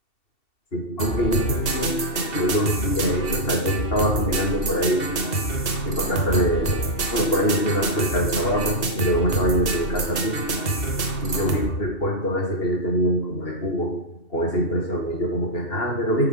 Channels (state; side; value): late; right; 2.7 ms